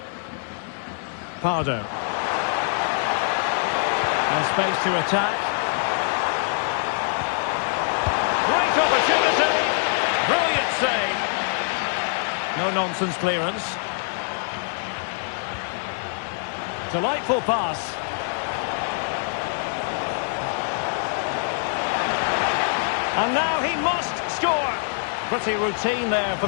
Pardo. And space to attack. Great opportunity. Brilliant save. No-nonsense clearance. Delightful pass. And now he must score. Pretty routine there for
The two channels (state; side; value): silent; right; 62 dB below the other